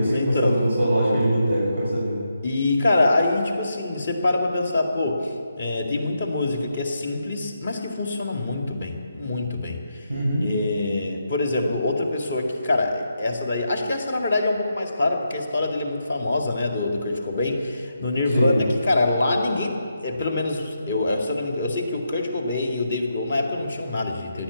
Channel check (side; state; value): both; inverted; correlation -0.83